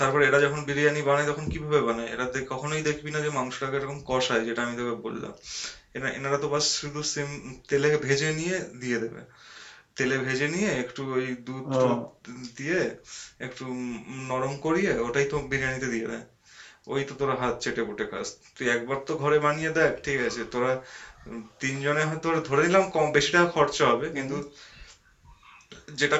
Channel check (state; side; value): identical; both; correlation 1.00